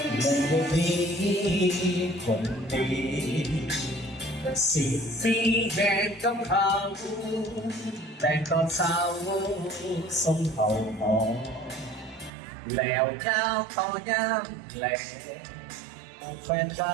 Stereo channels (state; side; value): drops out; left; at 12.3 s